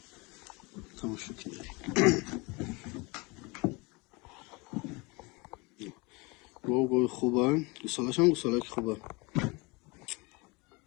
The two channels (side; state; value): right; quieter; 26.8 dB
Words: گوی خوبه گوسالاش هم گوسالاک خوبه